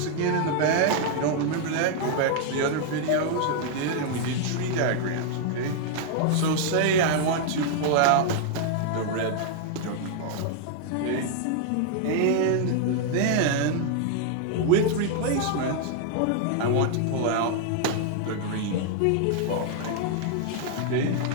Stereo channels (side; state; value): both; different; correlation 0.00